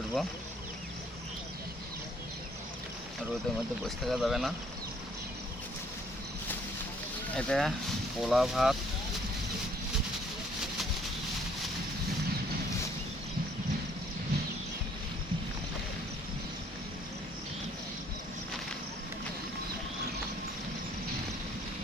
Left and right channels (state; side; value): normal; both; correlation 0.62